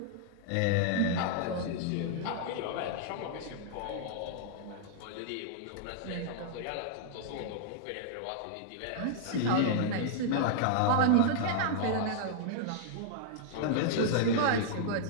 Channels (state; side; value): different; both; correlation -0.01